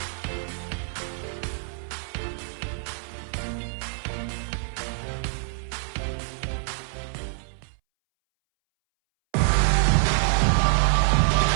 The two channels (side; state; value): left; silent; 61 dB below the other